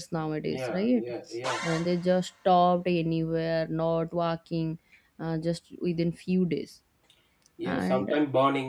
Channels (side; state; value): both; identical; correlation 1.00